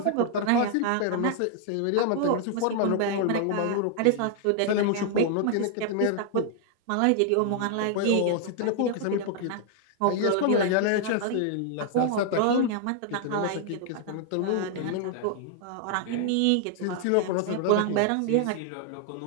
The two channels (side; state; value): both; different; correlation 0.00